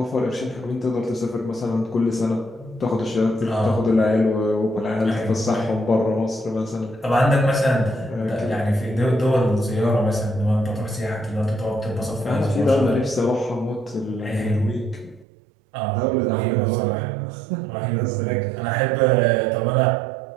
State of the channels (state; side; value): drops out; left; at 15.2 s